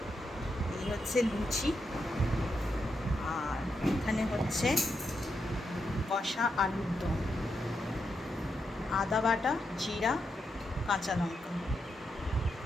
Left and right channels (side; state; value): both; normal; correlation 0.83